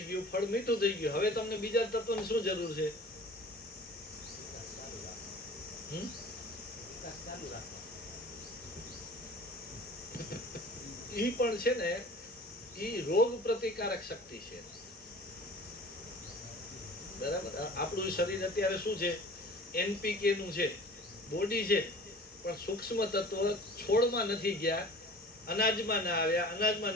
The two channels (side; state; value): both; normal; correlation 0.43